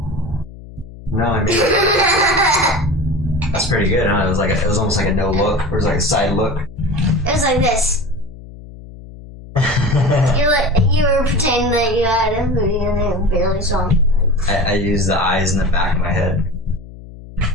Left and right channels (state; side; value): noise; left; hum, 17 dB below the sound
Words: No, I mean that's pretty good, huh? It was almost like a no look, or it was like a side look. It was like this. You were pretending that you had a hoodie and they barely saw me. I used the eyes in the back of my head.